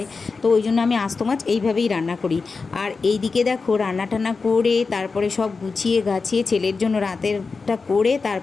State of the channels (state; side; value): quieter; right; 4.4 dB